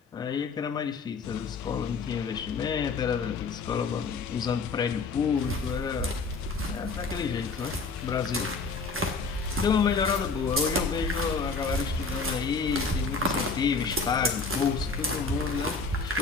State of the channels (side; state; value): right; quieter; 4.4 dB